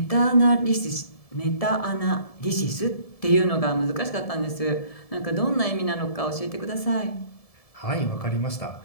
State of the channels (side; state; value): right; late; 1.7 ms